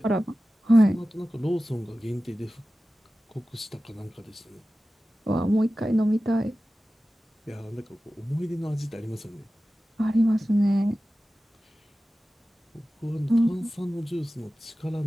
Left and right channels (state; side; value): normal; both; correlation 0.95